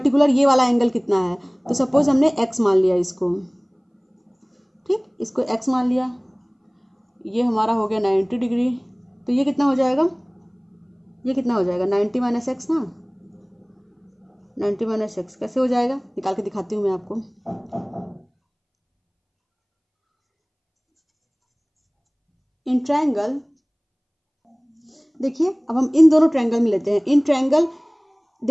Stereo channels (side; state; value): both; identical; correlation 1.00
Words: ये वाला एंगल कितना है। तो सपोज हमने एक्स मान लिया इसको, ठीक, इसको एक्स मान लिया, ये हमारा हो गया 90 डिग्री। तो ये कितना हो जाएगा, ये कितना हो जाएगा 90 माइनस एक्स ना, 90 माइनस एक्स कैसे हो जाएगा, निकाल के दिखाती हूँ मैं आपको। इन ट्रायंगल, देखिए अब हम इन दोनों ट्रायंगल में लेते हैं। इन ट्रायंगल